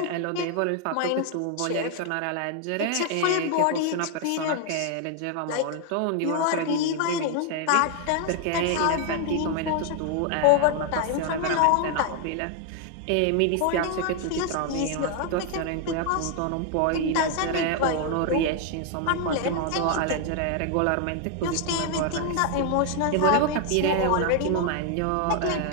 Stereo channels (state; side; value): different; both; correlation 0.00